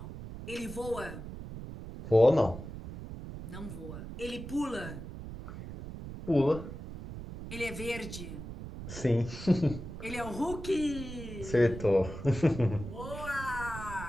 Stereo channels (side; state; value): right; noise; rumble, 10 dB below the sound